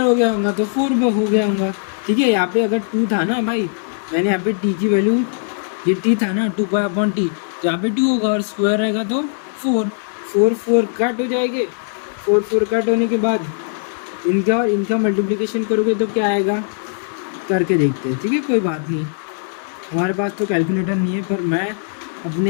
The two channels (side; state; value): right; silent; digital silence